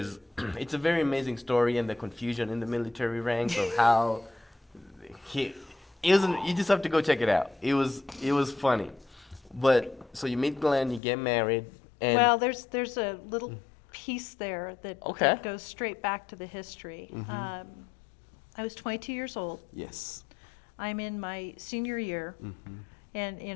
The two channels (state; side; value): drops out; right; at 11.0 s